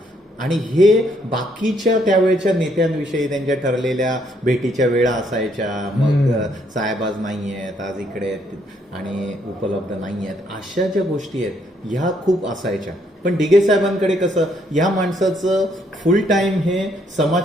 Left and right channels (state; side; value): normal; both; correlation 0.70